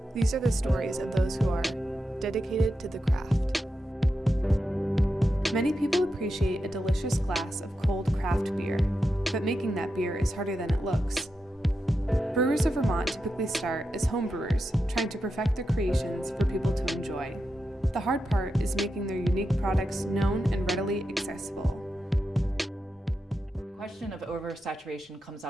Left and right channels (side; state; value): both; normal; correlation 0.88